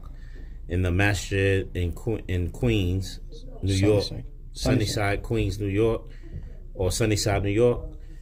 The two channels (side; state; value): both; identical; correlation 1.00